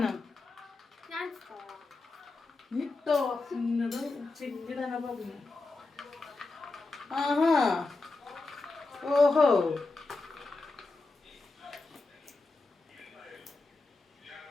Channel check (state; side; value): quieter; right; 3.4 dB